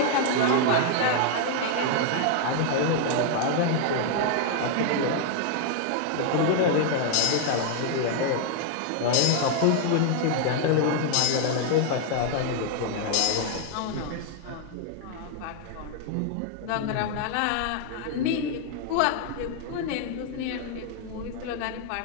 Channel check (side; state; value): both; different; correlation 0.00